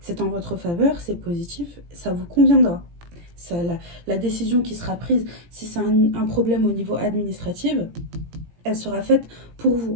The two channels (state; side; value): late; left; 17 ms